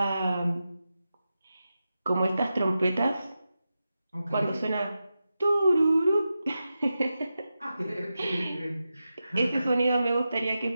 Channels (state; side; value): inverted; both; correlation -0.91